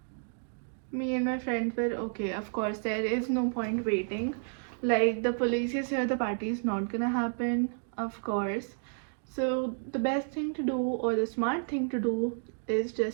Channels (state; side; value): silent; left; digital silence